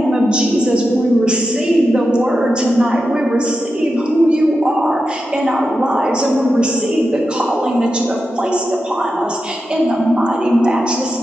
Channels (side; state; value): both; normal; correlation 0.90